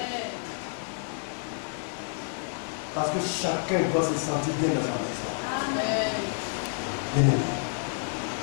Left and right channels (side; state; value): right; silent; 59 dB below the other